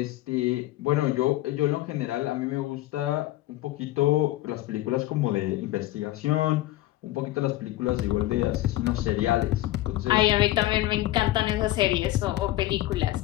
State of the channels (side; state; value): right; quieter; 15.9 dB